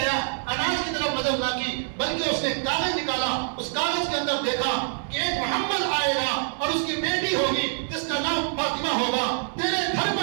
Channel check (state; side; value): silent; left; 58 dB below the other